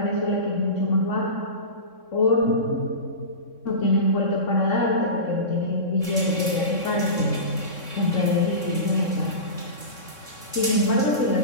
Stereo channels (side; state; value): right; late; 3.6 ms